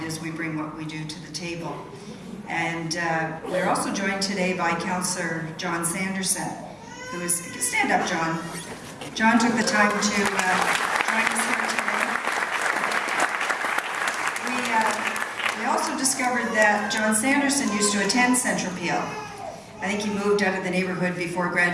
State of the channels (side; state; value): both; identical; correlation 1.00